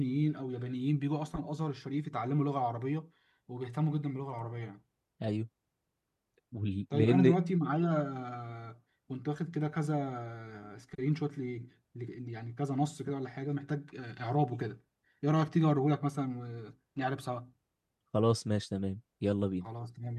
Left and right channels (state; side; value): identical; both; correlation 1.00